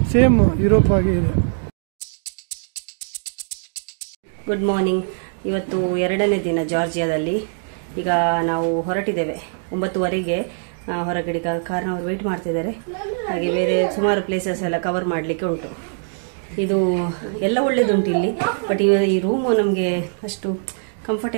ಸೇಮ್ ಯುರೋಪ್ ಆಗಿ ಇದೆ. Good morning. ಇವತ್ತು 2ನೇ ದಿನ ಜಾರ್ಜಿಯಾದಲ್ಲಿ. ಈಗ ನಾವು ಹೊರಟಿದ್ದೇವೆ 9:15ಗೆ. ಹೊರಗಡೆ ಕಾರ್ನವರು ವೇಟ್ ಮಾಡ್ತಿದ್ದಾರೆ. ಹಾಗೆ ಬೇರೆ ಸುಮಾರು ಪ್ಲೇಸಸ್ ಎಲ್ಲ ಕವರ್ ಮಾಡಲಿಕ್ಕೆ ಉಂಟು. ಇದು ಎಲ್ಲ ಒಳ್ಳೇದುಂಟು ಇಲ್ಲಿ, ಬಟ್ ಈ ರೂಮು ನಮಗೆ ಅಷ್ಟು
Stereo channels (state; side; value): silent; left; 64 dB below the other